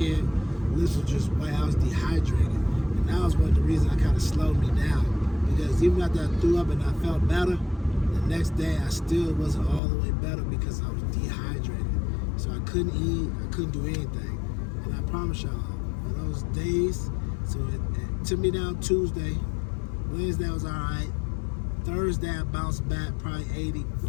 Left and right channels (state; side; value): drops out; right; at 9.8 s